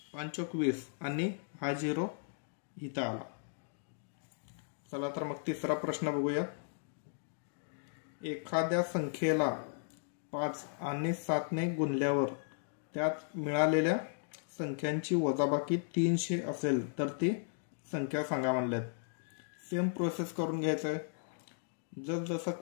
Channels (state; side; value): silent; right; digital silence